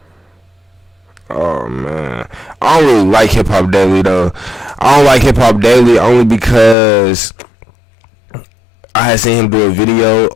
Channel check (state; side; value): drops out; right; at 6.8 s